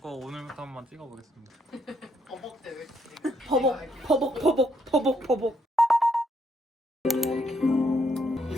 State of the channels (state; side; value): normal; both; correlation 0.74